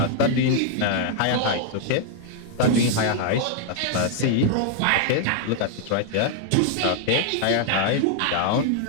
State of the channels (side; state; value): both; different; correlation 0.00